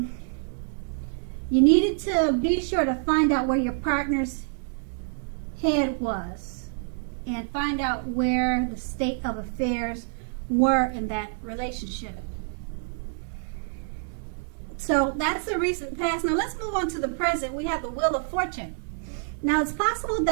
you needed to be sure to find out where your partner's head was and find out where the state of affairs were in that relationship. So that's the recent past. Now let's move on to the present. We have the Wheel of Fortune. Now it's possible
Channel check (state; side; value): silent; left; 59 dB below the other